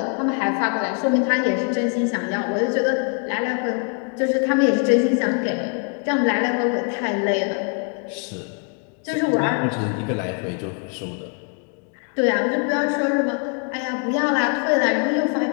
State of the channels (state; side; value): quieter; right; 39.0 dB